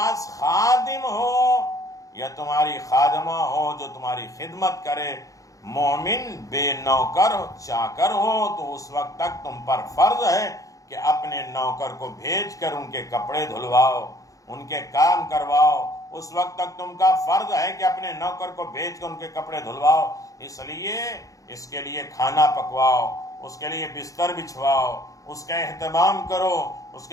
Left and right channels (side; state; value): right; late; 0.16 ms